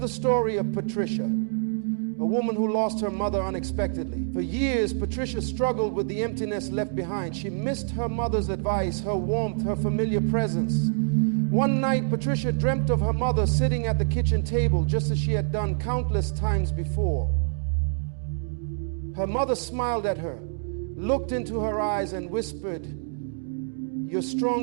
story of Patricia, a woman who lost her mother unexpectedly. For years, Patricia struggled with the emptiness left behind. She missed her mother's advice, her warmth, her familiar presence. One night, Patricia dreamt of her mother sitting at the kitchen table, just as she had done countless times before. Her mother smiled at her, looked into her eyes, and whispered, "You're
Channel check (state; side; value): silent; left; digital silence